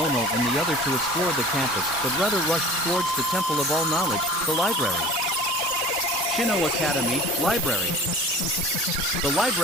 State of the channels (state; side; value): normal; both; correlation 0.41